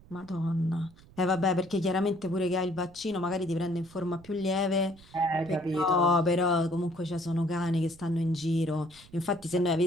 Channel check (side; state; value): right; noise; rumble, 23 dB below the sound